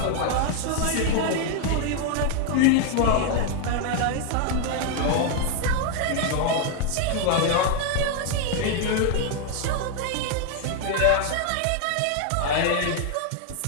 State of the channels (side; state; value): both; different; correlation 0.00